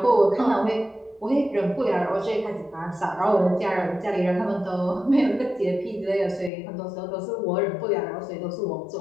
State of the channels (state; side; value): drops out; right; at 6.5 s